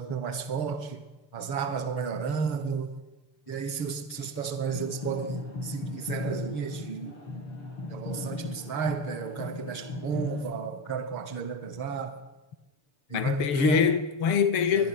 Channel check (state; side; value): late; right; 6.9 ms